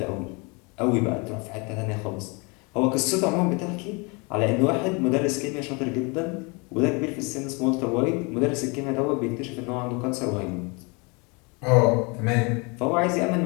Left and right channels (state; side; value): quieter; right; 30.0 dB